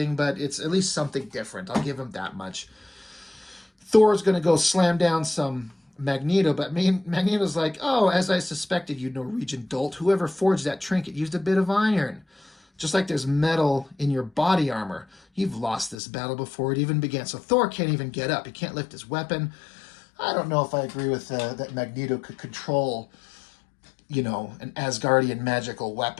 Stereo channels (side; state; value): right; drops out; at 16.0 s